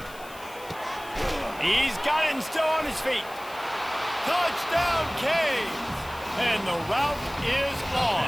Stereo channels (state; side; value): noise; left; hiss, 20 dB below the sound